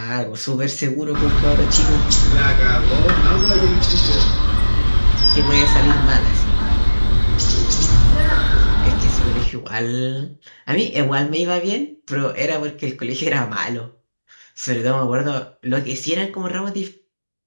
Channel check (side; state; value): both; inverted; correlation -1.00